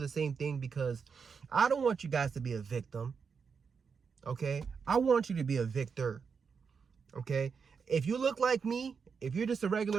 same thing because I don't want you guys to be a victim, okay? I want you to be a victor, okay? If you look like me, if you're just a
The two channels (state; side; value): quieter; left; 5.8 dB